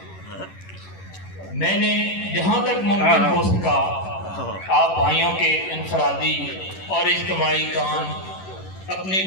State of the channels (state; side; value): late; right; 11 ms